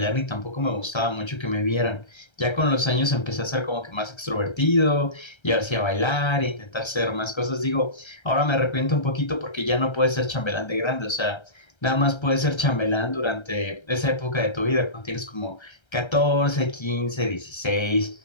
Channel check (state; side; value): late; right; 1.3 ms